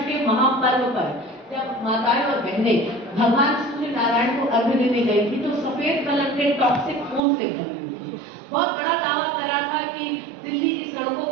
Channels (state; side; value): drops out; left; at 7.2 s